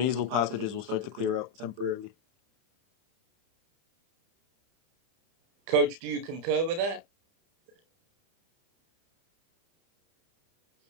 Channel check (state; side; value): late; left; 30 ms